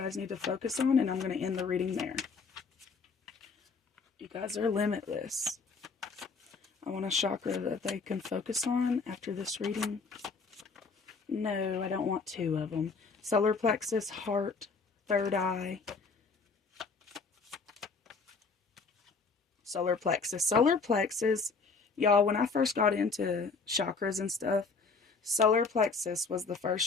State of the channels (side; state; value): right; quieter; 4.6 dB